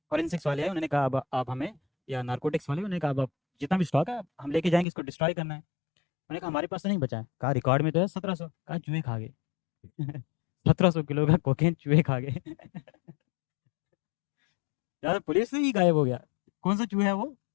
फॉरेंसिक्स वाले आए, उन्होंने कहा अब आप हमें, या नारकोटिक्स वाले, उन्होंने कहा अब आप जितना भी स्टॉक है हम लेके जाएंगे, इसको डिस्ट्रॉय करना है। उन्होंने कहा हमारे पास तो नहीं बचा है, कहा रिकॉर्ड में तो है 1700, कहा चूहे खा गए। 1700 किलो का कोकेन चूहे खा गए। यार पुलिस से ही गायब हो गया, कौन सा चूहा है वो।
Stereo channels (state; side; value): drops out; right; at 4.9 s